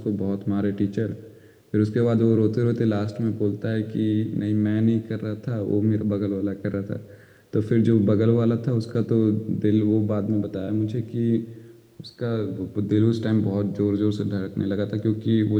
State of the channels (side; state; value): both; identical; correlation 1.00